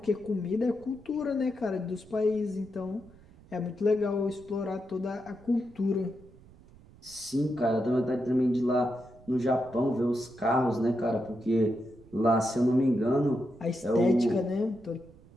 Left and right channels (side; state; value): right; noise; rumble, 24 dB below the sound